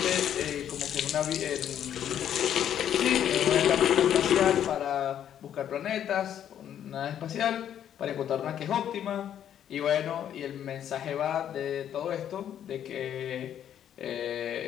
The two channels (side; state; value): right; quieter; 10.0 dB